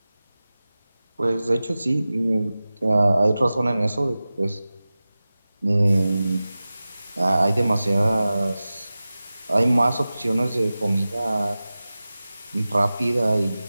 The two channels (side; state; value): both; inverted; correlation -0.96